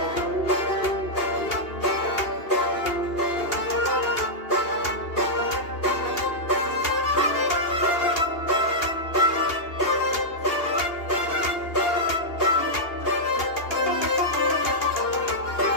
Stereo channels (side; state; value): right; late; 2.8 ms